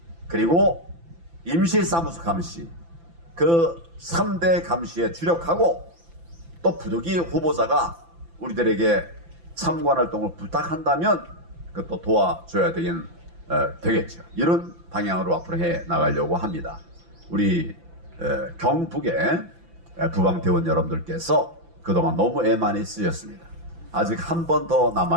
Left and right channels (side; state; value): left; late; 5.9 ms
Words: 그리고 임시사무소 감시, 그 3대 감시에 주력하고 또 부득이 후보자가 우리들에게 참관활동을 부탁한다면 그것도 도와줘야 되겠죠. 이런 방향으로 앞으로 해 나가려고 합니다. 우리 경북의 부방대원 여러분들께서 그동안 너무 애 많이 쓰셨습니다. 아직 한 번 더